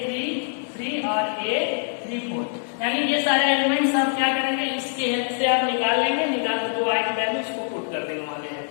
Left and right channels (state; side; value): silent; right; digital silence